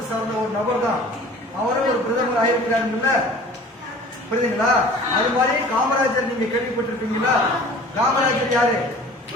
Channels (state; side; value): normal; both; correlation 0.45